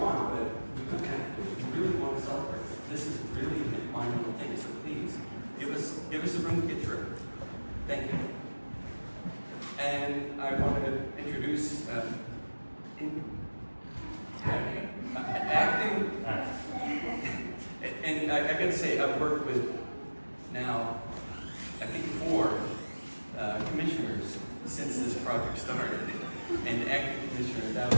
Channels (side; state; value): both; inverted; correlation -1.00